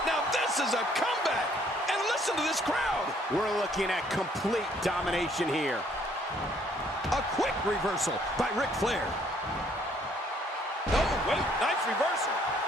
Now this is a comeback! And listen to this crowd! We're looking at complete domination here. A quick reversal by Ric Flair. Oh, wait, nice reversal.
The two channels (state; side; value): normal; both; correlation 0.64